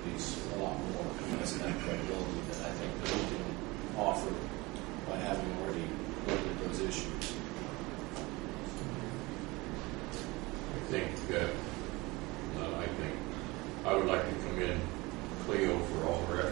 a lot more, as that credibility that I think that we can offer by having already looked at those issues. I would like to commend Cleo for all her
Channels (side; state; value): left; quieter; 23.0 dB